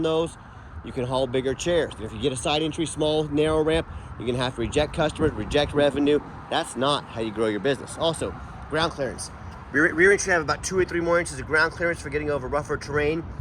those, you can haul bigger chairs. If you get a side entry, small, narrow ramp, you're gonna have to reject customers, reject revenue. That's not how you grow your business. Also, ground clearance. Rear entry have about 2 or 3 more inches of ground clearance for getting over rougher terrain,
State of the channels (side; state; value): both; identical; correlation 1.00